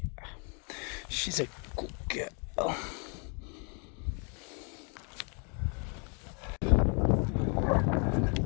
She's a good girl.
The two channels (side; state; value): right; quieter; 37.5 dB